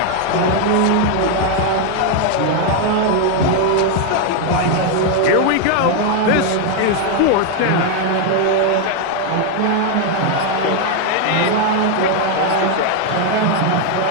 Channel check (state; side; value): different; both; correlation 0.01